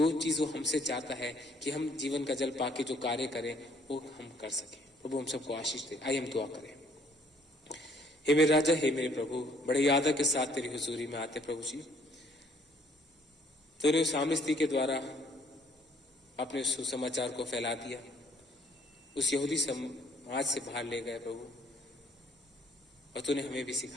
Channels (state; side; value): normal; both; correlation 0.62